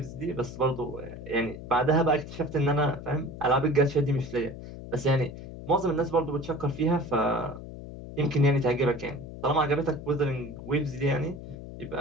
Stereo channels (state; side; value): noise; left; hum, 12 dB below the sound